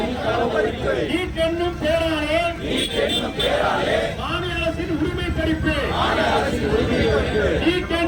நீட் என்னும் பெயராலே மாநில அரசின் உரிமை பறிப்பு நீட்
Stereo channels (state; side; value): identical; both; correlation 1.00